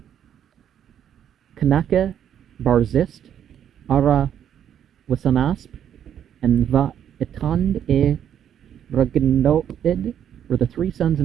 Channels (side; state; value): left; quieter; 9.6 dB